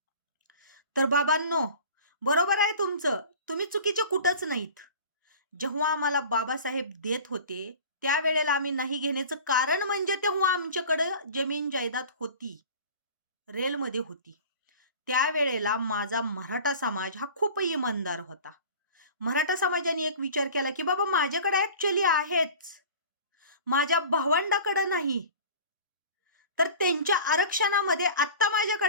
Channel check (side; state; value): both; inverted; correlation -0.40